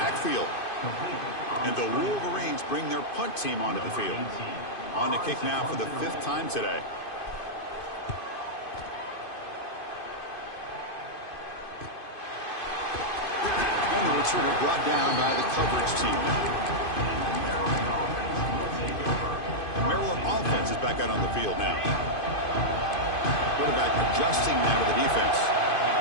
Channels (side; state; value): right; late; 2.5 ms